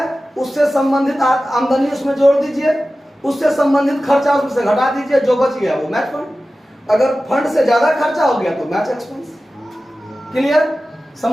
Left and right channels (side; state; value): both; normal; correlation 0.95